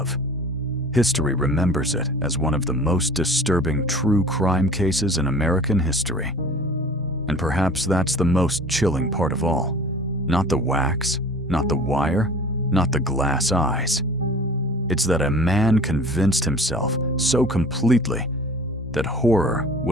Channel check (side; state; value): both; normal; correlation 0.43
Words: History remembers it as one of the most disturbing true crime cases in American history. And perhaps that's the most chilling part of all. Not the wax, not the wire, not the glass eyes. It's that a man convinced himself so completely that horror